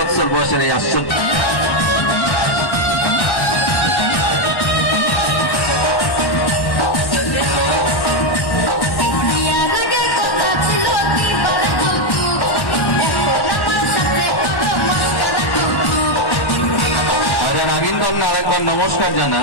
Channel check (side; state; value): right; late; 1.1 ms